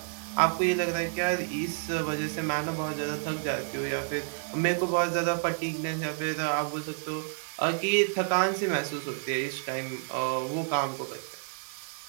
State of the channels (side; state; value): left; silent; 58 dB below the other